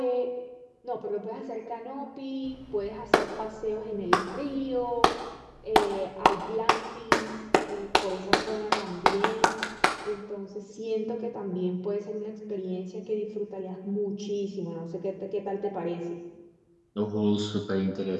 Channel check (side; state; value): both; identical; correlation 1.00